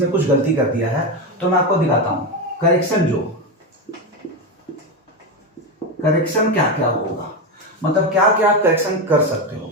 कुछ गलती कर दिया है, तो मैं आपको दिखाता हूं करेक्शन क्या क्या होगा, मतलब क्या क्या आप करेक्शन कर सकते हो।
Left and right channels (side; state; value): both; normal; correlation 0.13